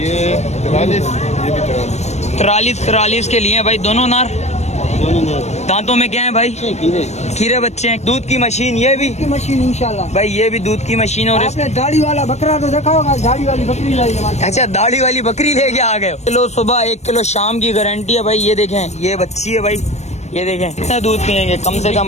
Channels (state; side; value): late; right; 0.32 ms